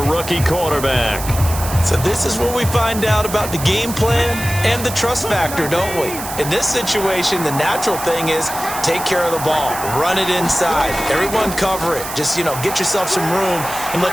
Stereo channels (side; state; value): right; noise; hiss, 9 dB below the sound